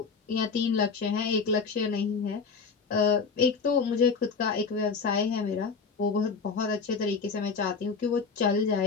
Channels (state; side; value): quieter; right; 5.2 dB